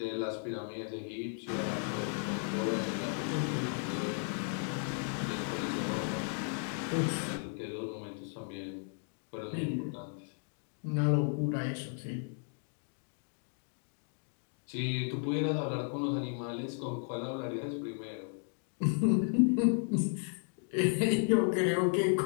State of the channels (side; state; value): right; silent; 55 dB below the other